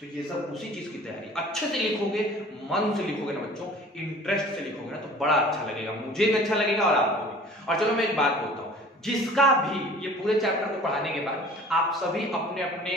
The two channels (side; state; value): both; normal; correlation 0.47